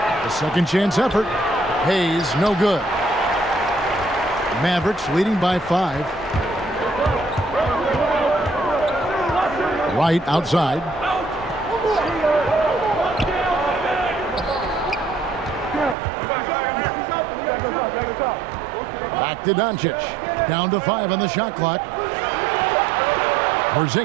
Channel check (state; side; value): drops out; left; at 16.0 s